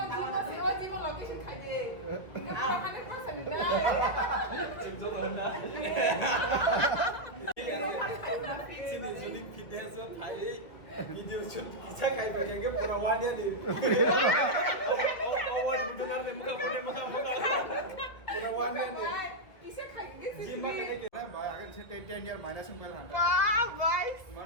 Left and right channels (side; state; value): right; late; 2.1 ms